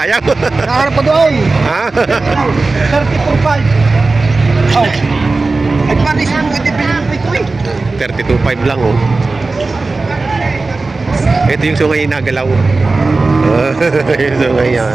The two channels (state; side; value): quieter; left; 3.6 dB